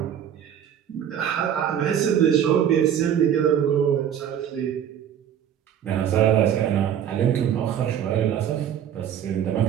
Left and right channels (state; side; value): quieter; left; 9.5 dB